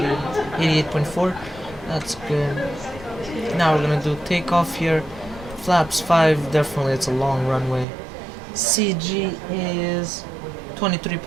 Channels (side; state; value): left; drops out; at 7.9 s